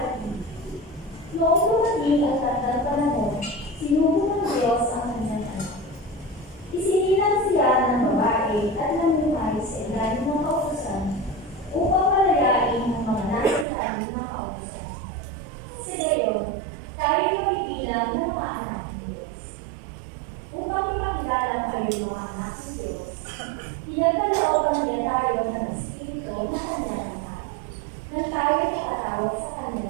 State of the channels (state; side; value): drops out; left; at 13.7 s